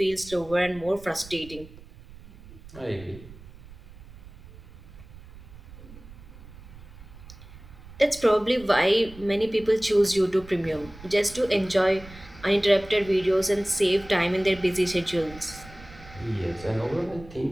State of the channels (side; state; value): right; noise; rumble, 19 dB below the sound